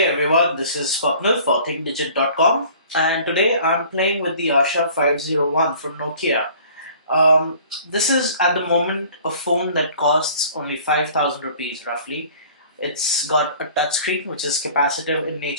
everyone, this is Swapnil for ThinkDigit.com, and today I'm playing with the Asha 501 from Nokia. This is at the moment a phone that costs only 5,000 rupees roughly. It's got a touchscreen which is capacitive in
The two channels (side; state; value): both; inverted; correlation -0.50